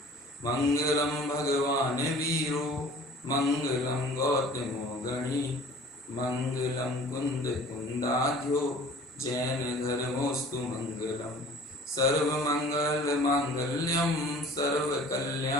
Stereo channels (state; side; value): normal; both; correlation 0.47